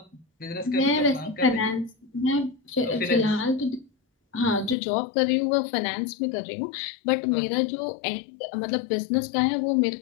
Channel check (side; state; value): right; drops out; at 4.8 s